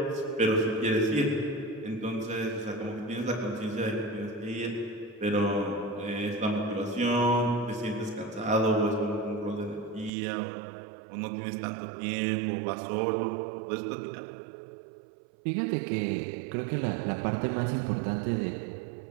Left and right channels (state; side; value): drops out; left; at 10.1 s